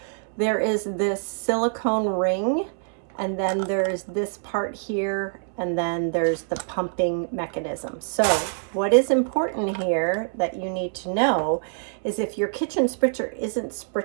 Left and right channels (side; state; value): left; silent; 62 dB below the other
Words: there is this silicone ring, and then there's this part here, and then there's the pumping mechanism. So what is important here that you need to know is if your kitchen spritzer isn't